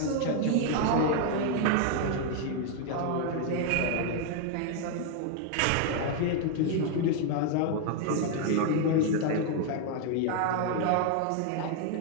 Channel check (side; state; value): both; different; correlation 0.00